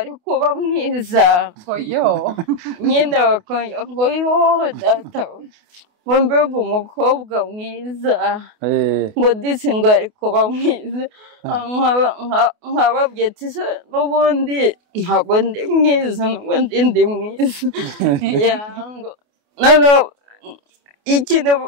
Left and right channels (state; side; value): late; left; 28 ms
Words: kuba mwiza, nyine ngo yo data ngo mbega umukobwa mwiza ngo disi ngo ari kuba mwiza nkababwiye ati se n'ubundi ntabwo ndi mwiza n'ubundi ndi mwiza noneho ikintu